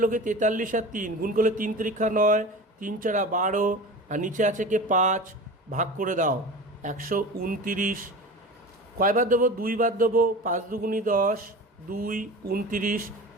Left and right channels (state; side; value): normal; both; correlation 0.33